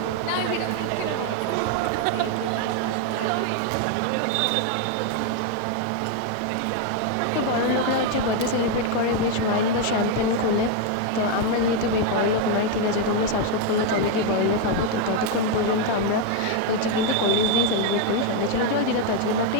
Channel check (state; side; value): different; both; correlation 0.01